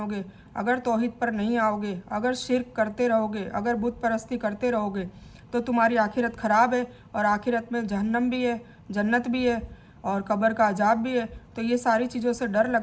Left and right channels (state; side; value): identical; both; correlation 1.00